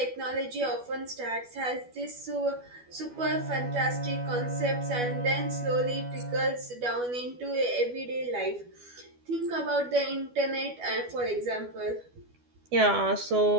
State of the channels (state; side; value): late; left; 12 ms